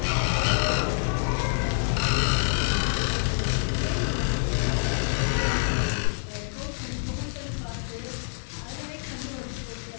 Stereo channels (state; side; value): silent; right; 60 dB below the other